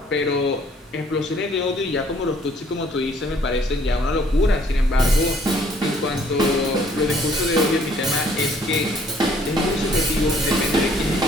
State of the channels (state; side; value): normal; both; correlation 0.61